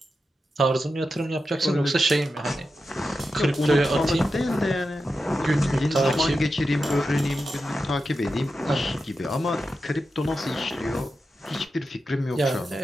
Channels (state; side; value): normal; both; correlation 0.90